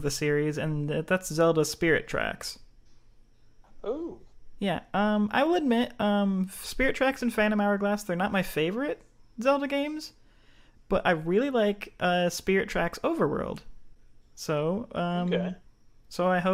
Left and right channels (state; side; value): identical; both; correlation 1.00